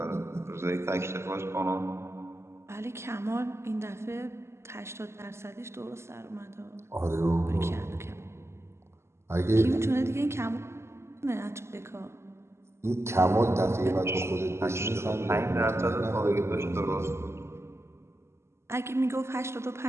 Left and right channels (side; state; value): left; late; 0.13 ms